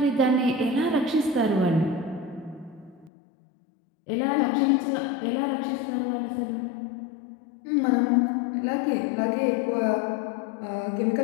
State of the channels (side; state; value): right; drops out; at 3.1 s